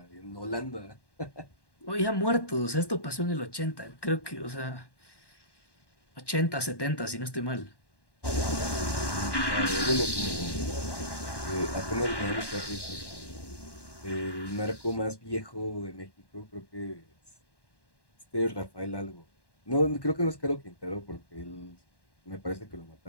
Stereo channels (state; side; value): late; right; 1.1 ms